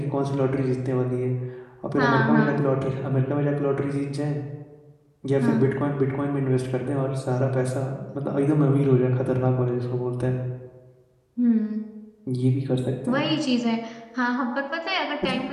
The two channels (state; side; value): identical; both; correlation 1.00